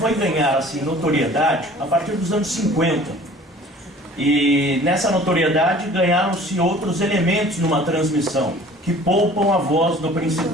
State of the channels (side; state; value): both; normal; correlation 0.48